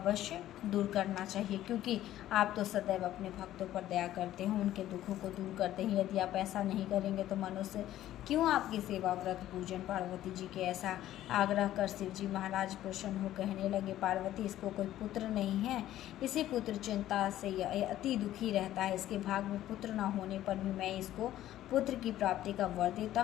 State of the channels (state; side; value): quieter; right; 13.3 dB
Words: दूर करना चाहिए, क्योंकि आप तो सदैव अपने भक्तों पर दया करते हैं, उनके दुखों को दूर करते हैं। यदि आप ऐसा नहीं करेंगे तो मनुष्य क्यों आपकी सेवा व्रत पूजन? पार्वती जी के ऐसा आग्रह कर शिव जी महाराज प्रसन्न हो कहने लगे, पार्वती इसको कोई पुत्र नहीं है, इसी पुत्र चिंता से यह अति दुखी रहता है। इसके भाग में पुत्र न होने पर भी मैं इसको पुत्र की प्राप्ति का वर देता